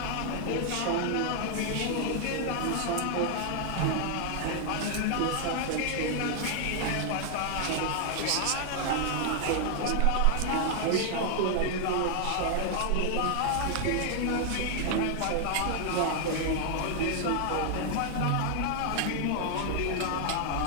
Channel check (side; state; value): both; different; correlation 0.00